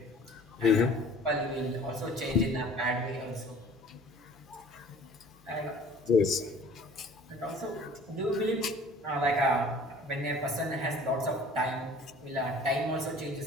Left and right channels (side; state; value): both; normal; correlation 0.49